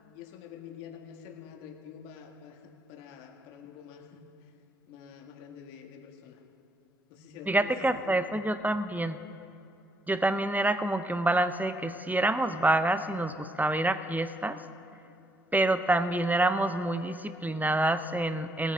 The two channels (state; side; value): normal; both; correlation 0.75